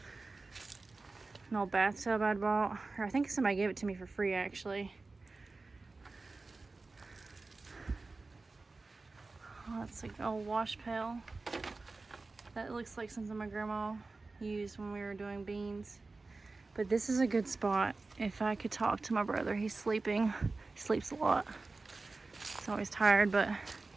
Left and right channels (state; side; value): quieter; left; 3.6 dB